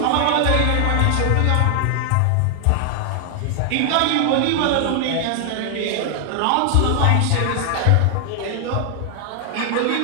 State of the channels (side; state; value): both; different; correlation 0.00